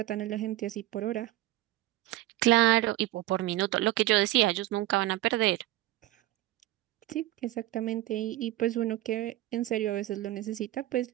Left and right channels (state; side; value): quieter; left; 15.9 dB